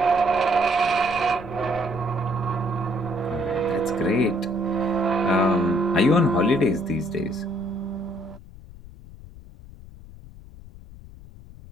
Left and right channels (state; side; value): noise; left; rumble, 18 dB below the sound